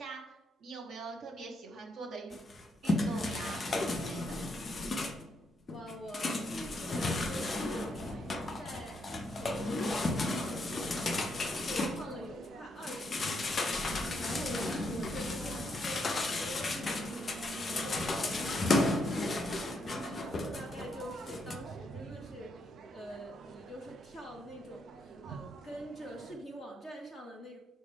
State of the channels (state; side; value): normal; both; correlation 0.77